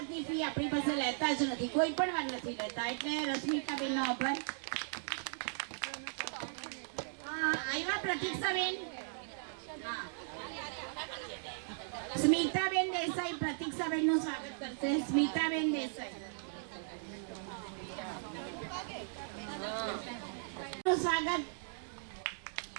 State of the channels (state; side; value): silent; left; digital silence